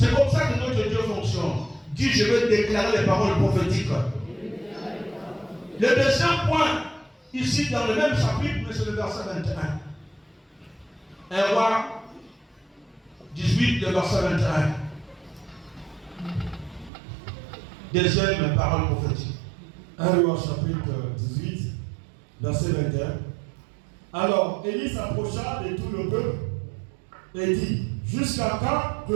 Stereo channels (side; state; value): left; drops out; at 16.9 s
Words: comme ça que notre Dieu fonctionne. Dis, je veux déclarer les paroles prophétiques. Le deuxième point, ici dans le même chapitre, mais c'est le verset 21. 1 roi 18, le verset 21. Deuxième parole prophétique. 1 roi chapitre 18, verset 21. Alors Élie s'approcha de tout le peuple et dit, jusqu'à quand